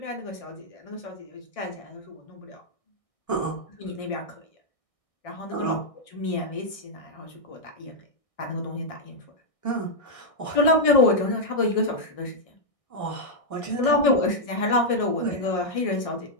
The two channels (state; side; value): late; right; 1.6 ms